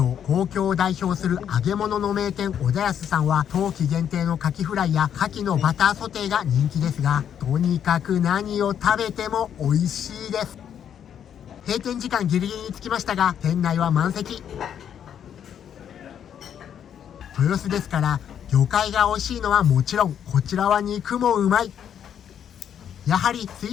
東京を代表する揚げ物の名店小田安さんは冬季限定のカキフライやカキのバターソテーが人気ですが、とにかく何を食べても美味しいです。閉店時間ギリギリに着きましたが店内は満席。豊洲ですから魚介が美味しいのはもちろん、こちらは肉もうまい。やはり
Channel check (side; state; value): right; quieter; 9.0 dB